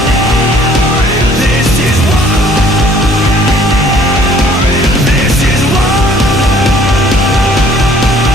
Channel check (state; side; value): normal; both; correlation 0.57